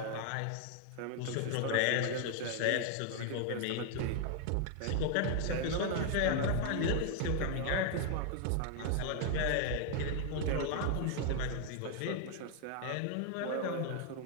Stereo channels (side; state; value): both; different; correlation 0.00